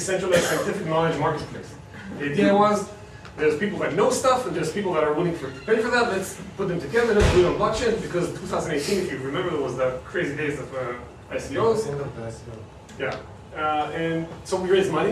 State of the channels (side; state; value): both; identical; correlation 1.00